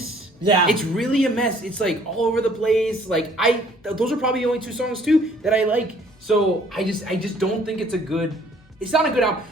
Yeah. It's really a mess. It's like all over the place. Like those are probably the only 2 songs too that I like. So I just don't think it's not a good album.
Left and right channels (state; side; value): normal; both; correlation 0.59